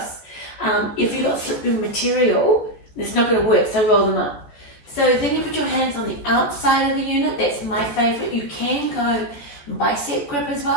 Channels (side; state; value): right; late; 14 ms